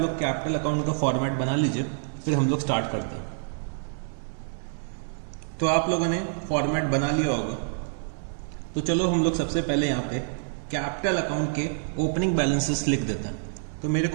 लोग कैपिटल अकाउंट का फॉर्मेट बना लीजिए, फिर हम लोग स्टार्ट करते हैं। तो आप लोगों ने फॉर्मेट बना लिया होगा, तो चलो हम लोग सबसे पहले यहाँ पे कैपिटल अकाउंट के ओपनिंग बैलेंसेस लिख देते हैं। तो मेरे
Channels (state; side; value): silent; left; digital silence